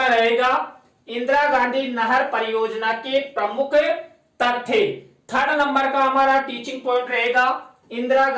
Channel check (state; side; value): identical; both; correlation 1.00